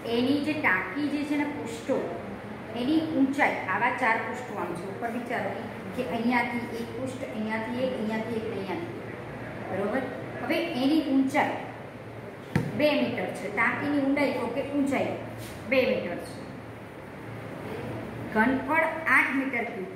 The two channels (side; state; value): both; identical; correlation 1.00